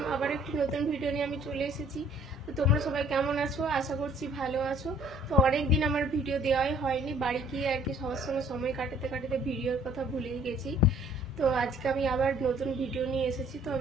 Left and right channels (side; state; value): both; normal; correlation 0.57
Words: আবার একটি নতুন ভিডিও নিয়ে আমি চলে এসেছি। তো তোমরা সবাই কেমন আছো? আশা করছি ভালো আছো। তো অনেকদিন আমার ভিডিও দেওয়াই হয়নি, বাড়ি গিয়ে আর কি সবার সঙ্গে সময় কাটাতে কাটাতে ভিডিওর কথা ভুলেই গেছি। তো আজকে আমি আবার নতুন ভিডিও নিয়ে এসেছি। তো